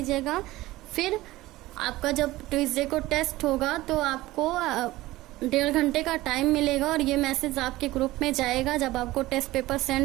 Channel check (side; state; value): left; quieter; 17.8 dB